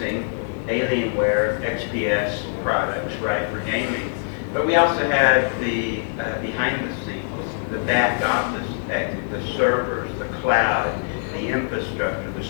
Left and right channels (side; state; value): right; silent; digital silence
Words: Alienware XPS products, right, for gaming. But we also have the behind the scenes, the back office, the servers, the cloud, the infrastructure, the